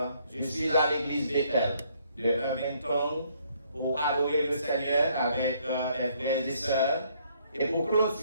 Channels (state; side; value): inverted; both; correlation -0.67